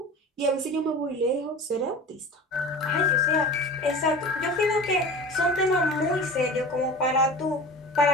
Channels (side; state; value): both; normal; correlation 0.36